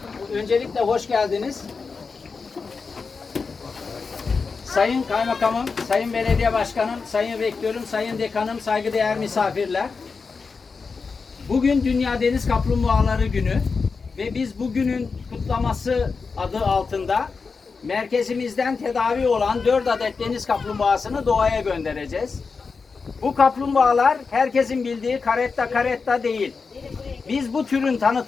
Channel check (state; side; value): quieter; right; 4.8 dB